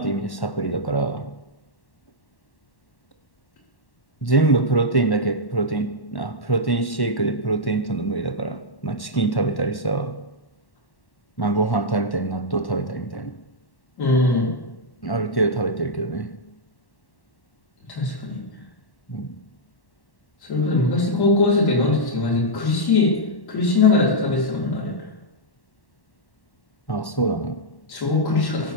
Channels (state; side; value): late; right; 1.1 ms